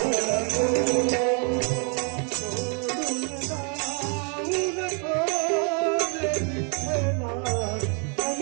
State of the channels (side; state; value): left; quieter; 38.7 dB